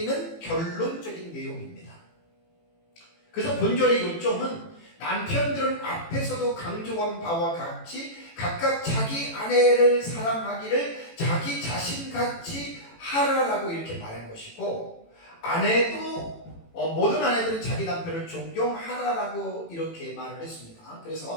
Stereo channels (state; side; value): late; right; 18 ms